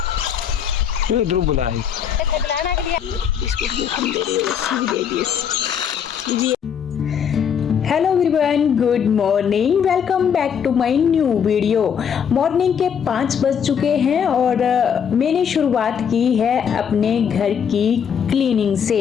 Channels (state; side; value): quieter; right; 7.7 dB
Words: ध्रुव बुलाए hello everyone, good morning, welcome back to my new video. Morning के 5 बज चुके हैं और मैंने शुरुआत की है अपने घर की क्लीनिंग से।